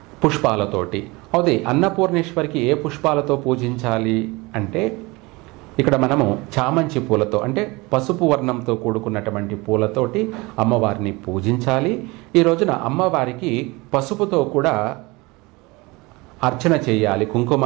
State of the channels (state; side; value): quieter; left; 24.0 dB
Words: పుష్పాలతోటి. అదే అన్నపూర్ణేశ్వరికి ఏ పుష్పాలతో పూజించాలి అంటే ఇక్కడ మనము చామంతి పూలతో, అంటే పసుపు వర్ణంతో కూడుకున్నటువంటి పూలతోటి అమ్మవారిని పూజించాలి. ఈ రోజున అమ్మవారికి పసుపుతో కూడా అర్చన చేయాలి,